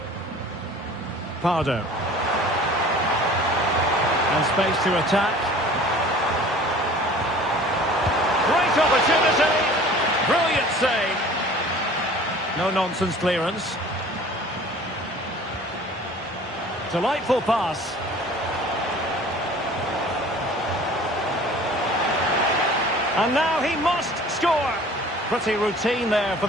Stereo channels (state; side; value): normal; both; correlation 0.46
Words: Pardo. And space to attack. Great opportunity. Brilliant save. No-nonsense clearance. Delightful pass. And now he must score. Pretty routine there for